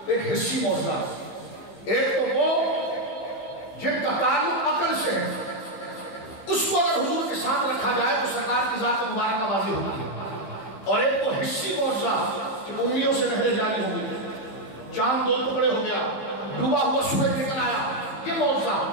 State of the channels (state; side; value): late; right; 15 ms